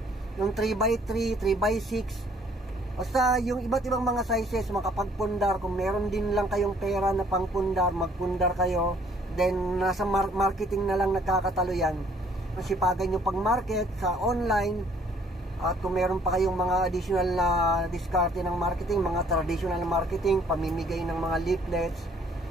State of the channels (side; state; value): both; normal; correlation 0.60